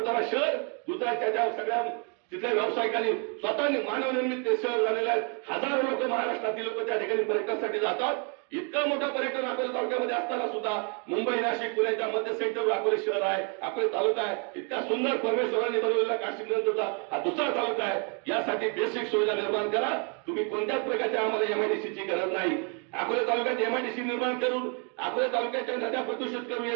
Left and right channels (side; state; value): left; quieter; 36.7 dB